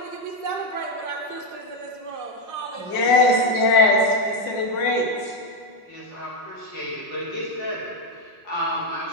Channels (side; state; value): right; late; 5.5 ms